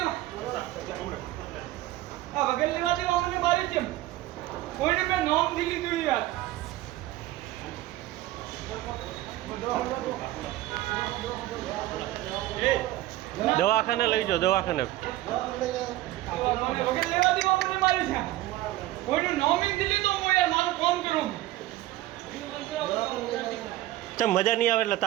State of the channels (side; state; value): left; quieter; 16.0 dB